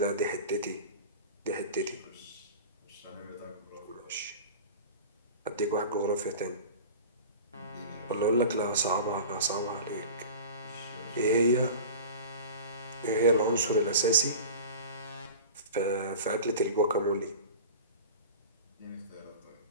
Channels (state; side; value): inverted; both; correlation -0.36